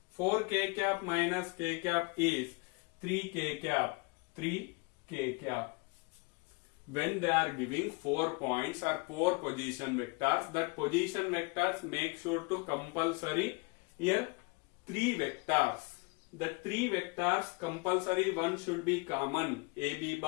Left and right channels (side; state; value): right; quieter; 29.2 dB